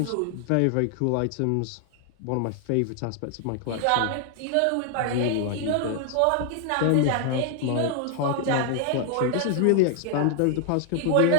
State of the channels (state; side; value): different; both; correlation 0.00